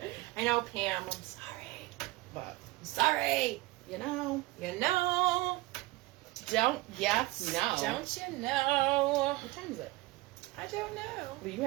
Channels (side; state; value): left; quieter; 20.4 dB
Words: it. I know, Pam, I'm sorry. But I'm sorry. You know. Don't you know? What time is it? I don't know. Well, you